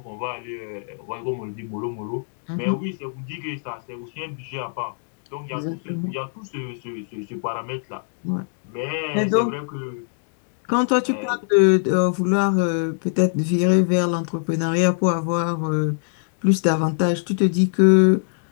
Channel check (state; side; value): silent; right; digital silence